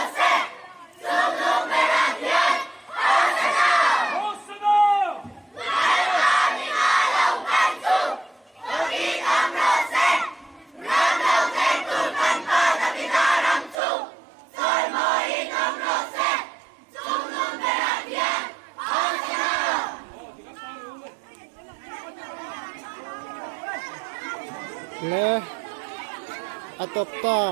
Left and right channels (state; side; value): drops out; left; at 13.8 s